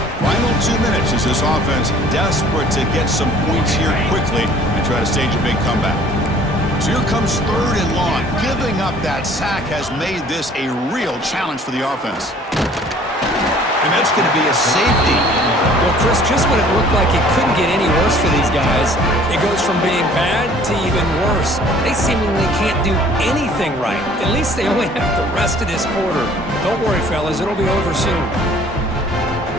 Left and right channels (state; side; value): normal; both; correlation 0.54